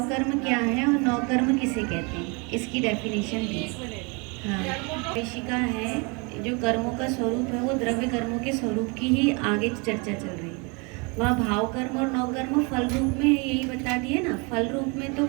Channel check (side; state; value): left; quieter; 30.7 dB